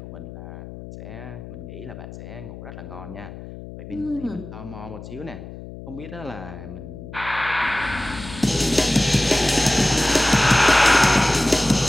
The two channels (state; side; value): noise; left; hum, 13 dB below the sound